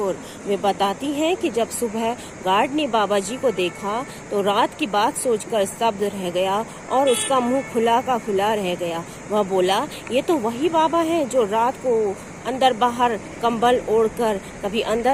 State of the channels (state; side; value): identical; both; correlation 1.00